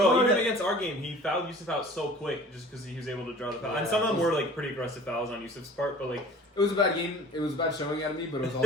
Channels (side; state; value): both; normal; correlation 0.46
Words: even against our game, he fouled Yusuf out so quick just because he was able to draw the foul. And some of them were like pretty aggressive fouls on Yusuf's part, but like It was a bad game. It was a bad showing out of me, but it was